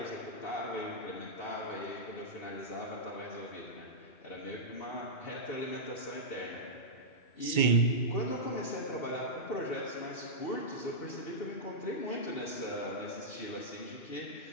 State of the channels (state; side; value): late; right; 2.2 ms